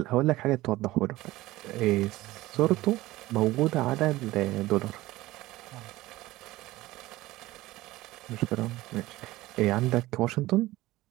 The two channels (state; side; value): quieter; left; 17.8 dB